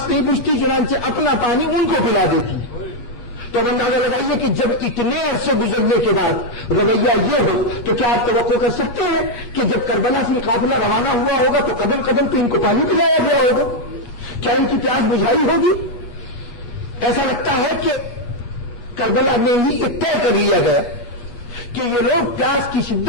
نہیں بجھتی، چنانچہ اپنا پانی ان کو پلا دیتی ہے۔ تو اب اندازہ لگائیے کہ جب اتنے عرصے گزرنے کے بعد رویہ یہ ہو تو کیا آپ توقع کر سکتے ہیں کہ جب کربلا سے قافلہ روانہ ہوا ہوگا تو قدم قدم پہ ان کو پانی پلایا گیا ہوگا؟ کیا ان کی پیاس بجھائی ہوگی؟ ایسا لگتا ہے کہ کربلا میں ہی یہ طے کر لیا گیا کہ یہ لوگ پیاس کی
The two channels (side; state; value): right; late; 8.3 ms